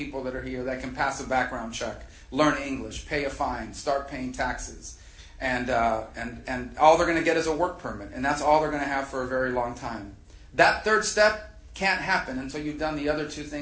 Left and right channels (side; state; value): both; identical; correlation 1.00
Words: that are here that can pass a background check, learn English, pay a fine, start paying taxes. And all they're going to get is a work permit. And that's all they're going to have for a very long time. That third step can't happen until you've done the other 2